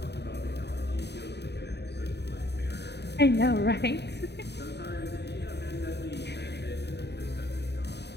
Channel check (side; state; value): right; late; 0.49 ms